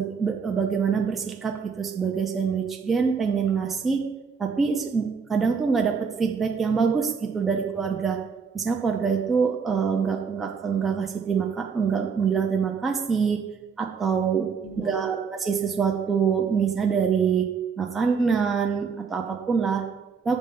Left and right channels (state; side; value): quieter; left; 5.8 dB